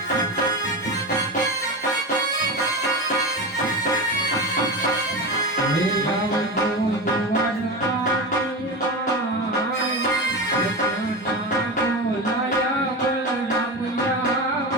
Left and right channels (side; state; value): both; normal; correlation 0.22